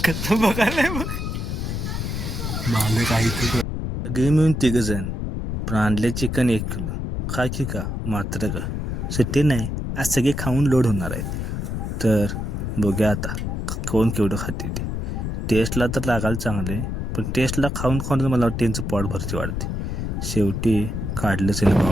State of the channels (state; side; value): noise; left; rumble, 3 dB below the sound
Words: कसं बघायला मग मला काही सगळे मिळून 3 जण पण आणले चिकन 1 किलो. खा की का मात्र का सुट्टी नाही, आज सगळे खाऊन लोड होणार आहेत. तर बघूया आता कोण केवढं खाते ते. टेस्टला तर लागायला चांगले, पण टेस्टला खाऊन खाऊन मला वाटतं त्यांचं पोट भरती वाढते. शेवटी काढलंच आहे ना